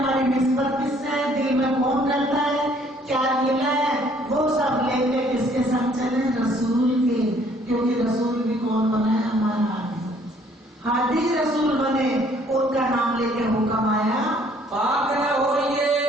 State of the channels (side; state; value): both; normal; correlation 0.61